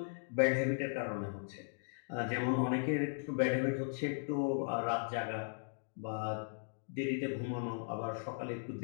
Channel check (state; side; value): silent; right; digital silence